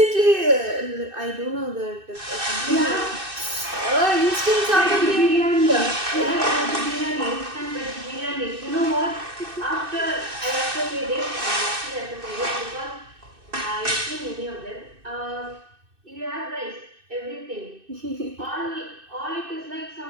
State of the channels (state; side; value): late; left; 2.6 ms